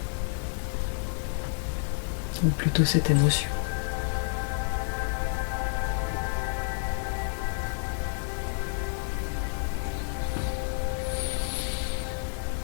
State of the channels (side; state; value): right; silent; 58 dB below the other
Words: Ou plutôt cette émotion.